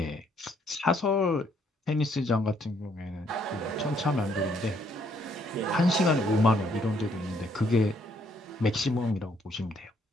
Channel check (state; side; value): normal; both; correlation 0.69